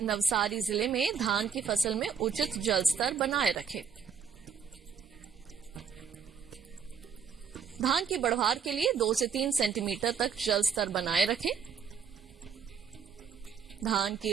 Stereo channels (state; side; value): quieter; left; 6.6 dB